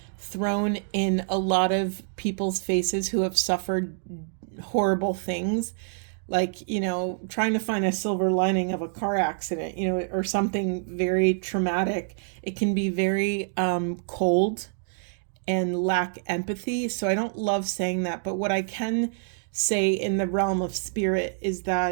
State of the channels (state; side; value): silent; left; digital silence